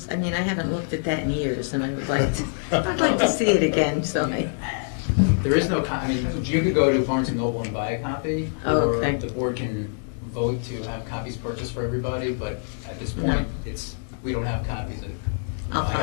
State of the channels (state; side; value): silent; right; digital silence